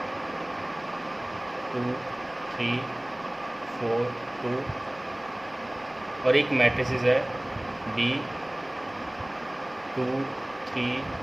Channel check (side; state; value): left; noise; rumble, 28 dB below the sound